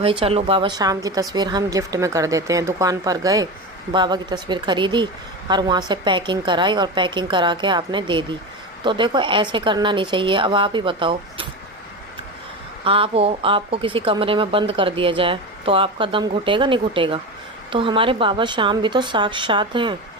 चलो बाबा श्याम की तस्वीर हम गिफ्ट में कर देते हैं। दुकान पर गए, बाबा की तस्वीर खरीदी और वहाँ से पैकिंग कराई और पैकिंग करा के आपने दे दी। तो देखो, ऐसे करना नहीं चाहिए। अब आप ही बताओ, आपको किसी कमरे में बंद कर दिया जाए तो आपका दम घुटेगा, नहीं घुटेगा? तो हमारे बाबा श्याम भी तो साक्षात हैं,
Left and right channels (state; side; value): normal; both; correlation 0.23